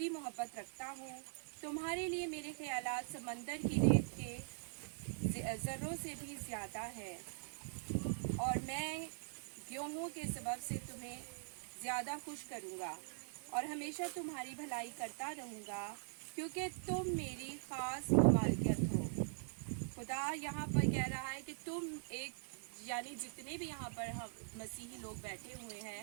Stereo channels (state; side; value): silent; left; digital silence